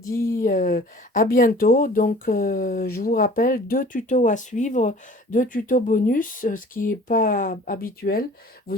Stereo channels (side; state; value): both; normal; correlation 0.48